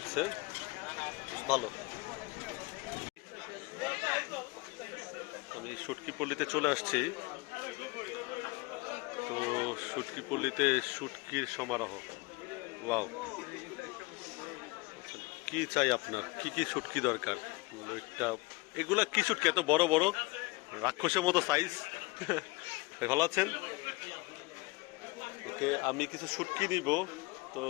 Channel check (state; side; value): quieter; right; 24.0 dB